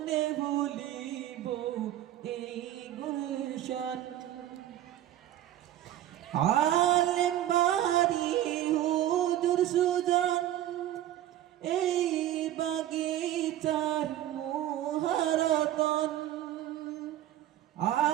ভুলিব এই গুলশান। আলেম বাড়ি হুজুর সুজন এই বাগিচার মুহারতন।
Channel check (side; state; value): left; quieter; 12.9 dB